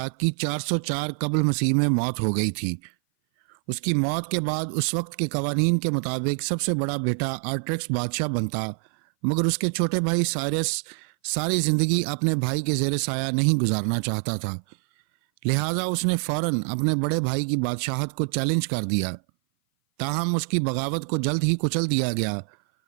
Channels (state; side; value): silent; left; 57 dB below the other